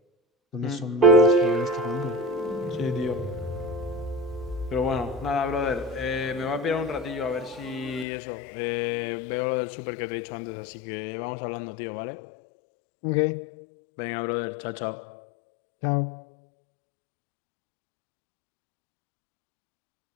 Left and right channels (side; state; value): right; drops out; at 8.1 s